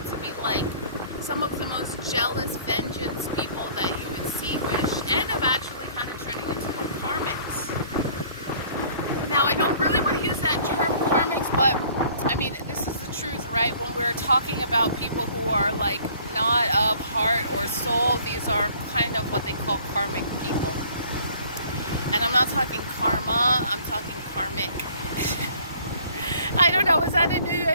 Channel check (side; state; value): both; inverted; correlation -0.55